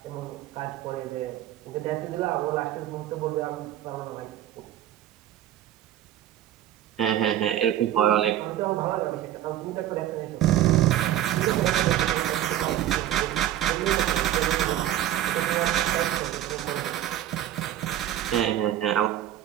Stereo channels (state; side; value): quieter; left; 12.1 dB